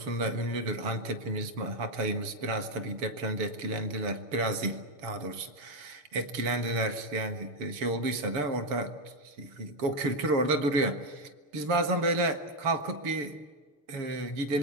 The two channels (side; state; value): left; late; 6.7 ms